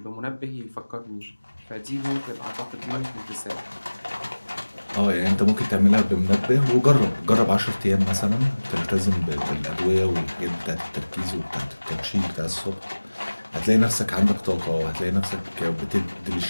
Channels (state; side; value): inverted; both; correlation -1.00